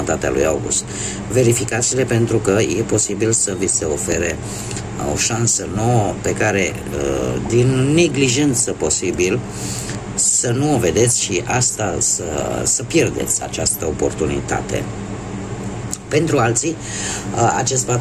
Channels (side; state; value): both; identical; correlation 1.00